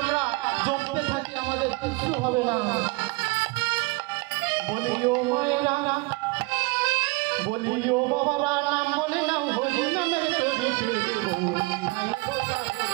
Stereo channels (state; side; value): quieter; left; 26.6 dB